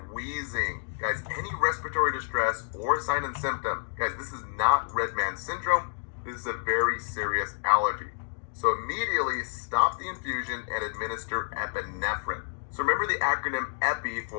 wheezing. Guys, any respiratory distress or sign and symptom, guys, this is not Redman syndrome. This is a very serious allergy. So immediately stop the infusion and administer epinephrine. So remember the acronym EPI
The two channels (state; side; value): silent; right; digital silence